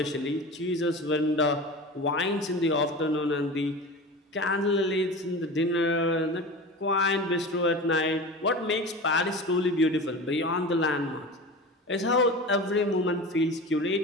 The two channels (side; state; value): both; normal; correlation 0.32